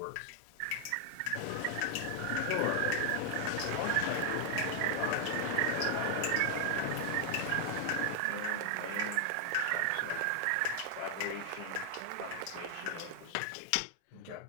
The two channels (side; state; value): both; different; correlation 0.00